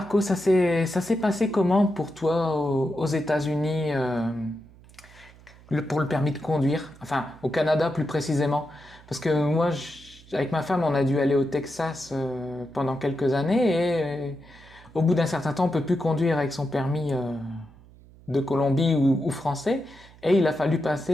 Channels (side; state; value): right; noise; hum, 23 dB below the sound